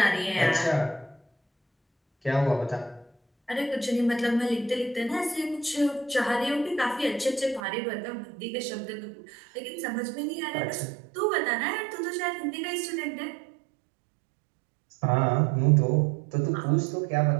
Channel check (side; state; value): left; drops out; at 7.6 s